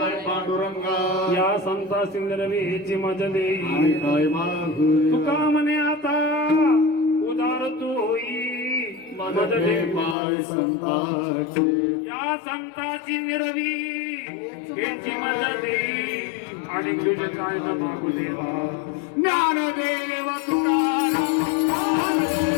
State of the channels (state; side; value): drops out; right; at 10.2 s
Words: पांडुरंगा या संता सिंदरवीची मज देई काय मागू तुका म्हणे आता उदार तू होई मज दे पाय संताचे या संताची निरवी याची मदत देई आणि तुझे काय न मागू देवा ज्ञानदेव तुकाराम